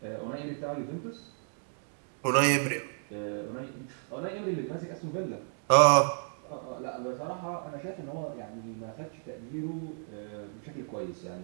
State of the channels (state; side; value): silent; left; 56 dB below the other